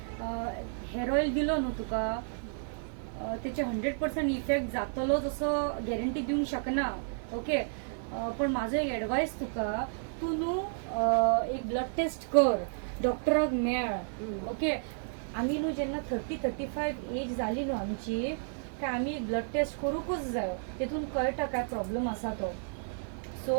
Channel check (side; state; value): left; silent; 57 dB below the other